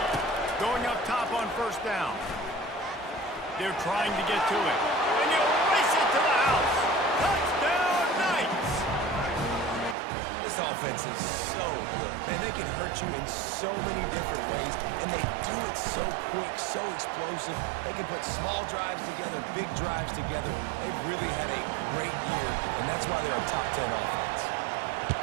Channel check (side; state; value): left; drops out; at 10.0 s